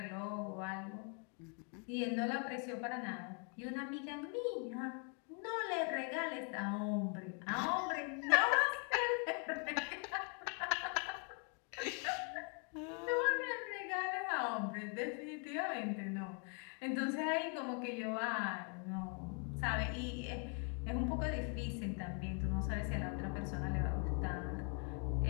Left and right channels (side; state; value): right; quieter; 38.8 dB